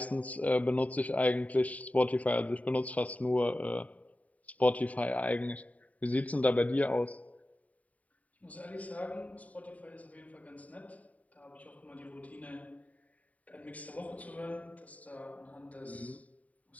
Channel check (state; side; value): late; right; 0.070 ms